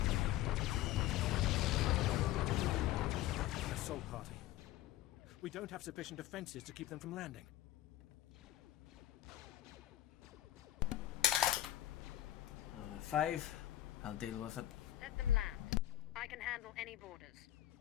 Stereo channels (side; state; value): right; quieter; 13.8 dB